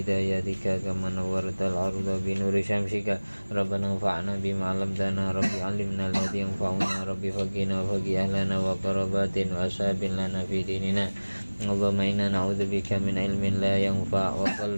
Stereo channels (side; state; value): both; inverted; correlation -1.00